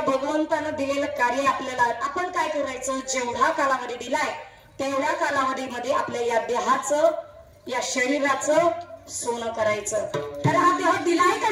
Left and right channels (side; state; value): both; identical; correlation 1.00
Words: भगवंतानं दिलेलं कार्य आपल्याला. आपण काय करायचं, जेवढा कालावधी दिलाय तेवढ्या कालावधीमध्ये आपल्या या देहाचं, या शरीराचं सोनं करायचं. तर हा देह दिलाय